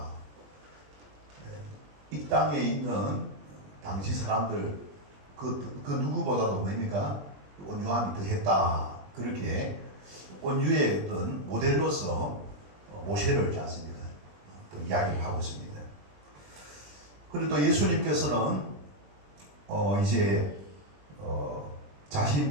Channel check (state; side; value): late; left; 21 ms